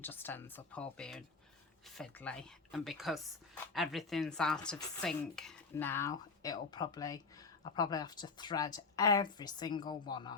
just ends up all being fiddly. And because everything's out of sync now, I'll probably have to thread every single one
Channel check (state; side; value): quieter; right; 4.5 dB